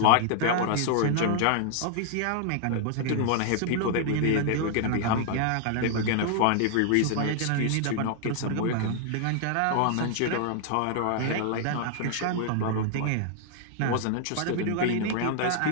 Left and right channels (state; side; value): different; both; correlation 0.00